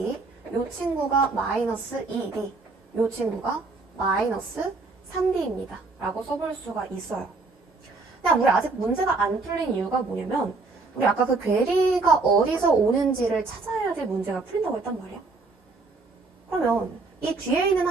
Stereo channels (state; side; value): quieter; left; 3.8 dB